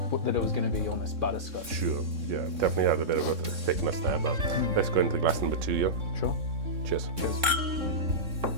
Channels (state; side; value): late; left; 3.6 ms